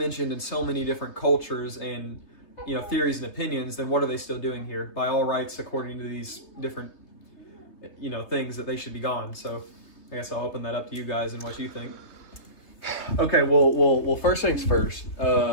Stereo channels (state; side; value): late; right; 3.3 ms